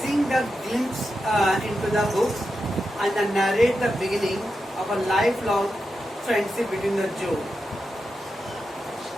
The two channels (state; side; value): normal; both; correlation 0.88